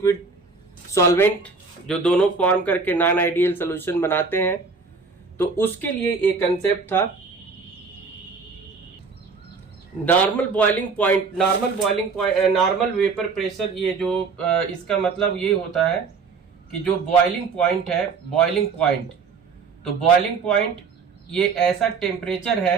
सॉल्वेंट जो दोनों फॉर्म करके नॉन आइडियल सॉल्यूशन बनाते हैं, तो उसके लिए एक कंसेप्ट था normal boiling point, normal vapour pressure. ये जो इसका मतलब ये होता है कि जो बॉइलिंग पॉइंट है, तो बॉइलिंग पॉइंट ये ऐसा टेम्परेचर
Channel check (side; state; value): left; quieter; 4.8 dB